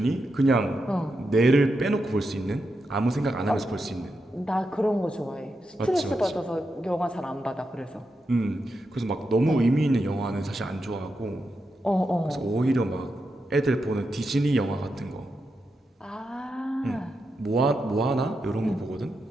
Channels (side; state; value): both; normal; correlation 0.86